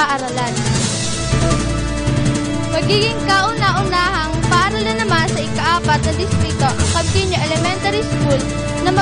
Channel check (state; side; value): identical; both; correlation 1.00